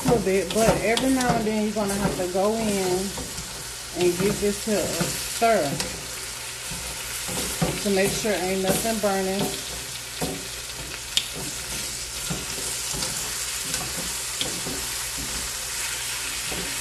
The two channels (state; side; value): identical; both; correlation 1.00